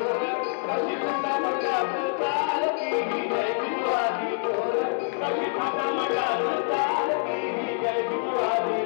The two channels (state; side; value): silent; right; 61 dB below the other